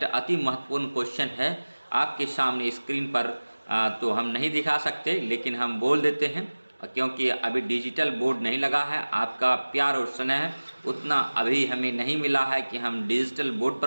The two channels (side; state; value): both; inverted; correlation -1.00